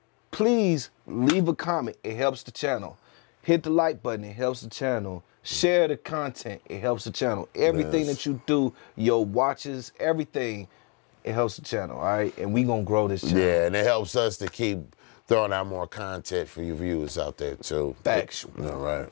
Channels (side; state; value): right; quieter; 33.8 dB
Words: please leave a comment. It helps the channel. Hit the like button. It helps the channel. Share the content. It helps the channel. Everything that you do, your watches, everything, it helps the channel, all right? And we going to grow this channel. Yeah, and it helps us to keep throwing out more content for you viewers out there, too. Factual. All right.